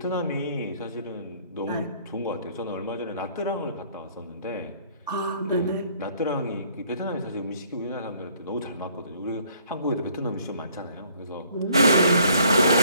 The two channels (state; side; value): inverted; both; correlation -0.61